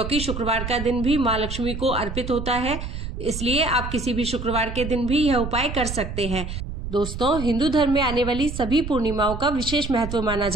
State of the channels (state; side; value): noise; right; rumble, 7 dB below the sound